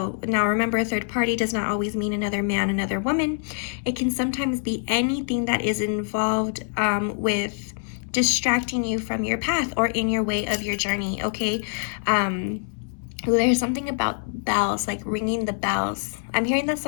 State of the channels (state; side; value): silent; right; 62 dB below the other